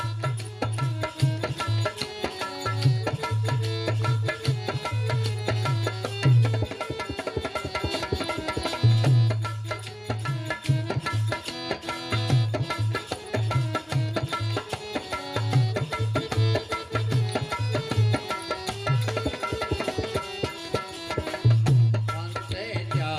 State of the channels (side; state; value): both; identical; correlation 1.00